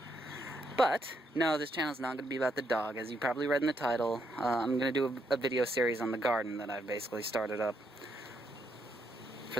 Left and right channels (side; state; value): both; normal; correlation 0.77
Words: But, no, this channel's not going to be about the dog. As you probably read in the title, I'm going to do a video series on the garden that I've basically started up.